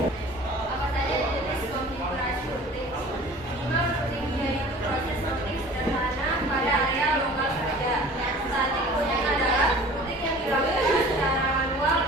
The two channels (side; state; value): both; normal; correlation 0.45